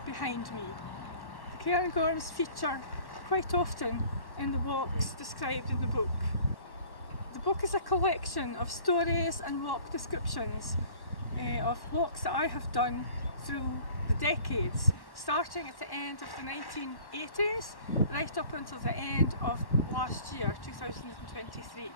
behind me. The Cairngorms feature quite often in the walks described in the book. The book is a collection of stories and walk descriptions of walks that I have done through the decades, starting at the end of the 1980s right up until the end of last year, 2023.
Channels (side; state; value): right; late; 1.1 ms